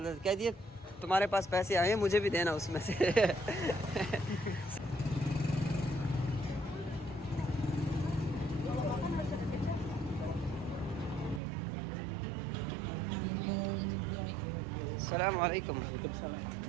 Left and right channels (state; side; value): drops out; left; at 11.4 s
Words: जाता है। कह दिए तुम्हारे पास पैसे आए हैं, मुझे भी देना उसमें से। अस्सलाम वालेकुम।